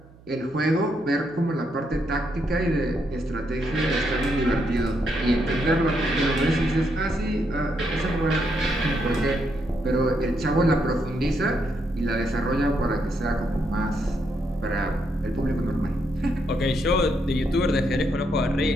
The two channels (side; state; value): right; noise; hum, 24 dB below the sound